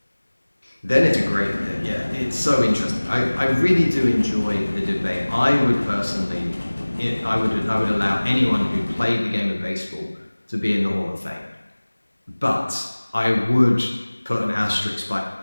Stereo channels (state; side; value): inverted; both; correlation -1.00